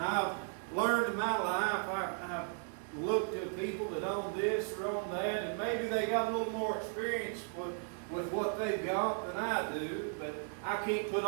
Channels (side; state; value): left; silent; 54 dB below the other